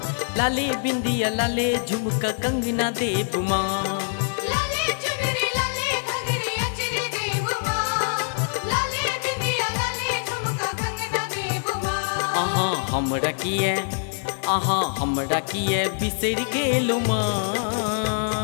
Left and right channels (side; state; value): right; silent; 56 dB below the other